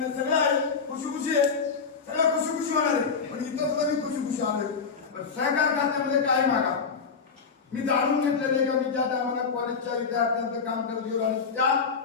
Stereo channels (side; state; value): right; quieter; 5.4 dB